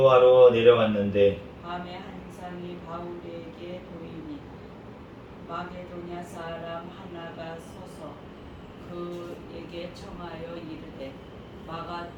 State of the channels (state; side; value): identical; both; correlation 1.00